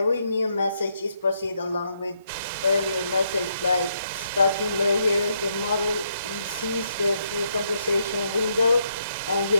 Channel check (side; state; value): both; inverted; correlation -0.76